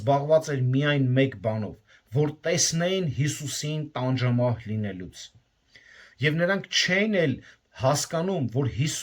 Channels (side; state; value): both; identical; correlation 1.00